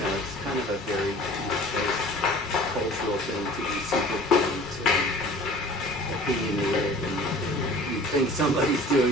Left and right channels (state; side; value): normal; both; correlation 0.46